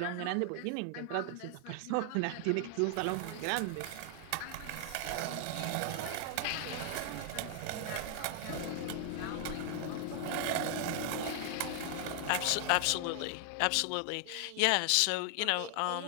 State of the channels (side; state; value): both; different; correlation 0.00